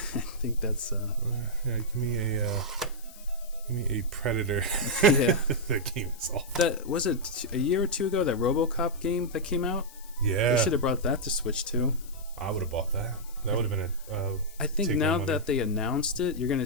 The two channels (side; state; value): left; noise; hiss, 20 dB below the sound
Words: think that's... yeah, give me a Predator. Yeah. That game is awful. That was it a year or two ago, that RoboCop game that came out? Yeah. They should have brought that to Switch too. I would have bought that. That would have been a I think now that they announced it, you're going to